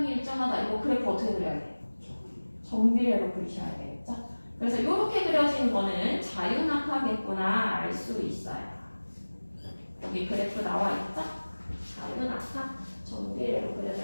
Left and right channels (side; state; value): both; inverted; correlation -1.00